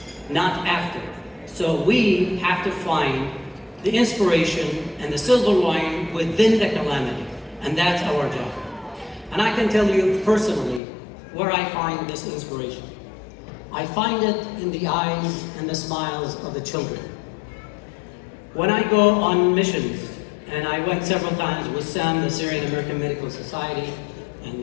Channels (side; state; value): right; drops out; at 10.8 s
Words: not after. So we have to find the inspiration and the silver lining within the calamity. And that's our job. And I can tell you personally where I find this inspiration. I find it in the eyes and the smiles of the children. When I go on missions And I went several times with Sam, the Syrian American Medical Society,